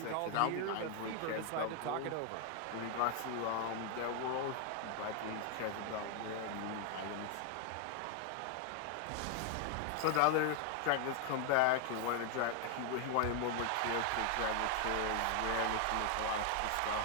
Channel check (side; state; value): both; different; correlation 0.00